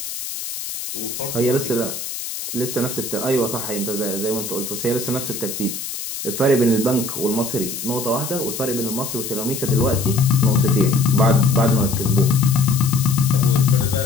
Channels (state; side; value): noise; left; hiss, 7 dB below the sound